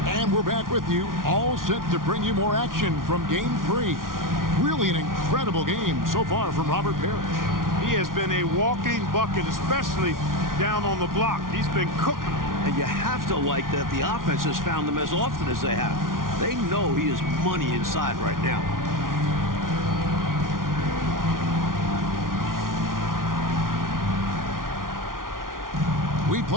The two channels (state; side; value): late; left; 0.90 ms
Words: And we're back with you, all set to bring you more action from Game 3. Really an incredible game so far from Robert Parrish. He has been a walking bucket, especially down on the block. He's been cooking. And you have to like that the offense has found him as often as they have. They know he is money inside right now. We